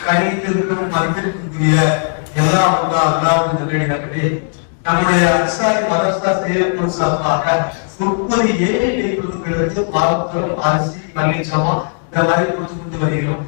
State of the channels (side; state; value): right; silent; 63 dB below the other